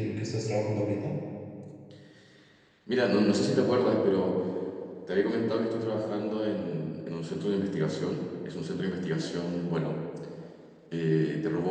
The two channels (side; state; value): both; identical; correlation 1.00